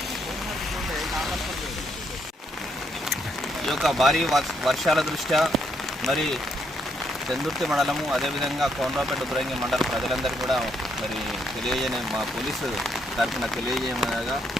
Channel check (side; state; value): both; normal; correlation 0.75